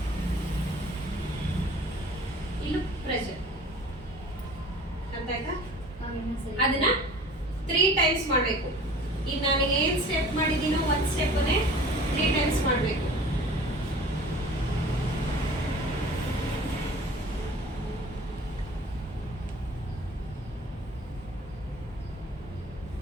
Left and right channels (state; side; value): normal; both; correlation 0.45